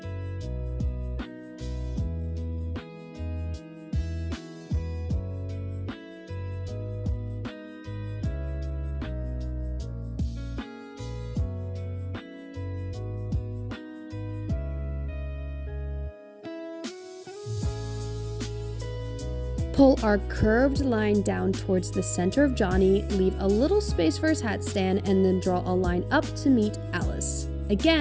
Pull our curved line down towards the center of Johnny, leave a little space for his hat stand, and then draw a line up to meet Alice.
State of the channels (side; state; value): both; identical; correlation 1.00